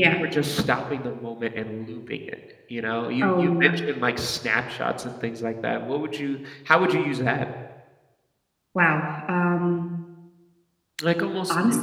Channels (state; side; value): identical; both; correlation 1.00